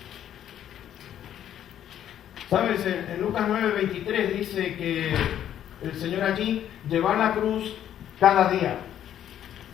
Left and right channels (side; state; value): right; quieter; 10.6 dB